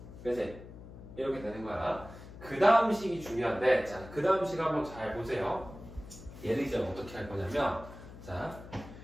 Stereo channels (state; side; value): noise; left; hum, 15 dB below the sound